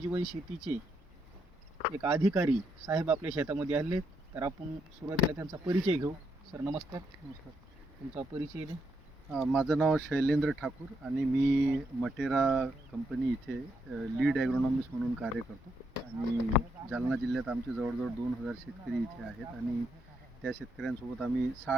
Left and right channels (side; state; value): both; normal; correlation 0.78